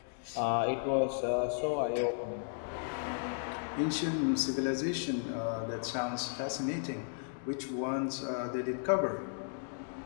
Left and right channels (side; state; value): right; silent; digital silence